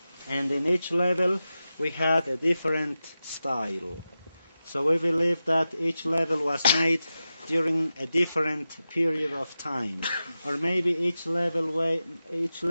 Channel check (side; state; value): both; inverted; correlation -0.92